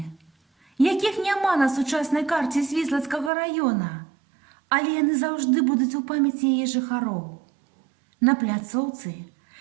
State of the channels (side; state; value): left; drops out; at 3.3 s